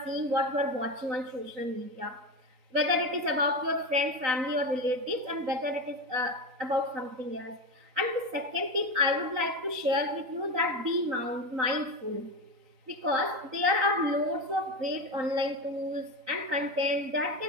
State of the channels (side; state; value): left; late; 3.9 ms